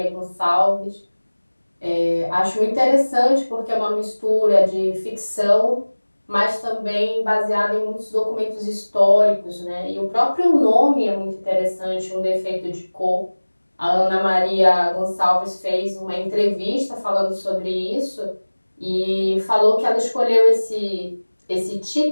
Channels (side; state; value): both; inverted; correlation -1.00